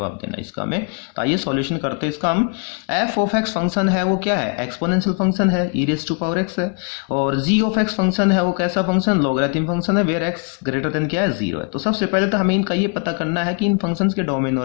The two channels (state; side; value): quieter; right; 35.5 dB